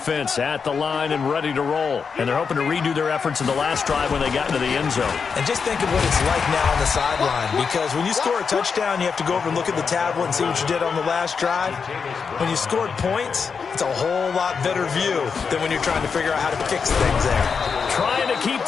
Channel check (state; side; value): quieter; right; 5.8 dB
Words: at the line and ready to roll. And they're hoping to redo their efforts in the last drive when they got into the end zone. And just think of what it's like now on the sideline, because when you score a touchdown, you have to go over and look at the tablet and see what you did on the last drive. When you scored points, it's a whole lot better view than when you're trying to figure out how to fix things there. Trying to keep